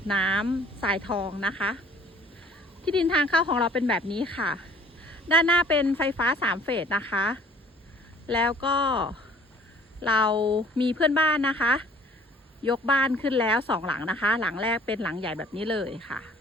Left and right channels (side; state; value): both; normal; correlation 0.54